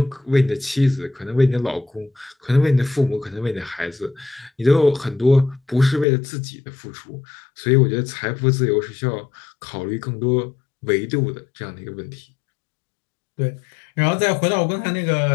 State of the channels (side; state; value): right; drops out; at 6.1 s